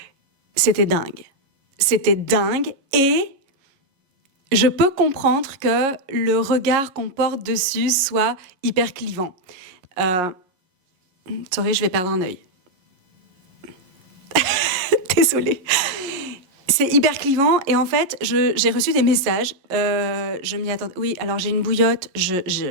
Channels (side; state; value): left; late; 11 ms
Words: C'était dingue. C'était dingue et je peux comprendre que le regard qu'on porte dessus soit hyper clivant. Sorry, je vais perdre un œil. Désolée. C'est hyper clivant et en fait, j'ai reçu des messages. Je m'y attendais. Oui, alors j'ai une bouillotte.